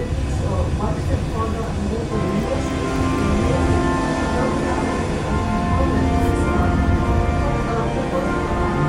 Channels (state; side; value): identical; both; correlation 1.00